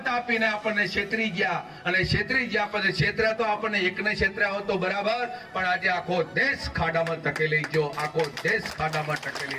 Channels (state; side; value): identical; both; correlation 1.00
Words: આપીને આપણને છેતરી ગયા, અને છેતરી ગયા પછી છેતર્યા તો આપણને એકને છેતર્યા હોત તો બરાબર, પણ આજે આખો દેશ ખાડામાં ધકેલી ગયો, આખો દેશ ખાડામાં